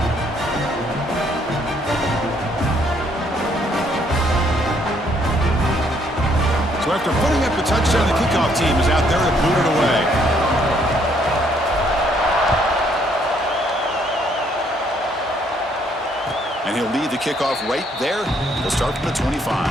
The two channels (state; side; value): normal; both; correlation 0.68